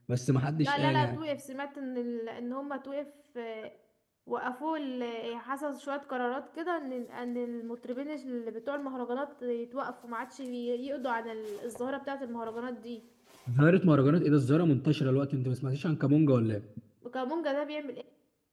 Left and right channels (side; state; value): both; identical; correlation 1.00